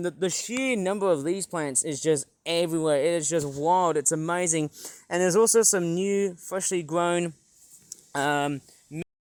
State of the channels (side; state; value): both; identical; correlation 1.00